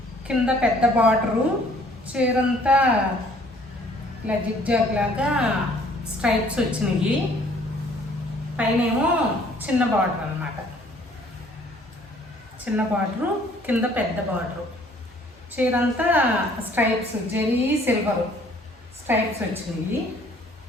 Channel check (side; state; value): both; normal; correlation 0.58